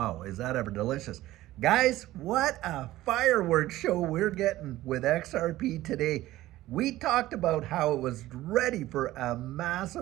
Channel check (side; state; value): left; quieter; 16.0 dB